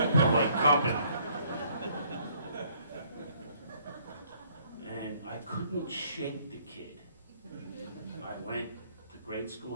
polite company. And I couldn't shake the kid. I went to grade school,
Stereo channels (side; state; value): both; inverted; correlation -0.62